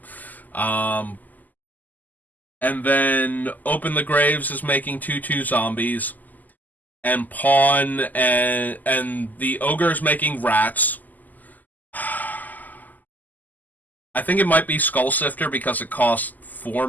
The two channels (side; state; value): right; late; 0.082 ms